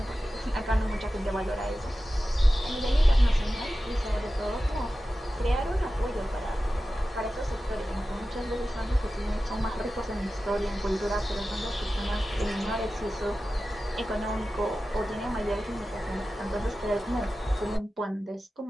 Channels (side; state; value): both; normal; correlation 0.94